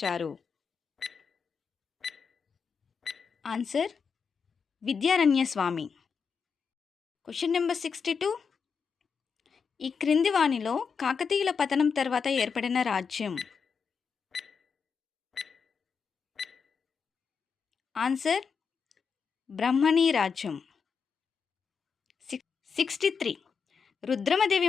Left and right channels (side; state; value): right; quieter; 5.9 dB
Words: Answer Vidyaranya Swami. Question number 62. ఈ క్రింది వానిలో కాకతీయుల పతనం తర్వాత ఏర్పడిన రాజ్యం? ఆన్సర్ బ్రహ్మణీ రాజ్యం. 63. రుద్రమదేవి